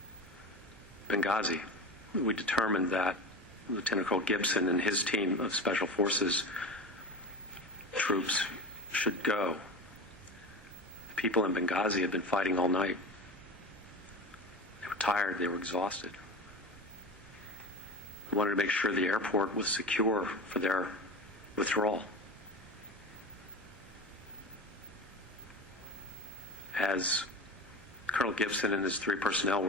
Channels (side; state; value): both; normal; correlation 0.29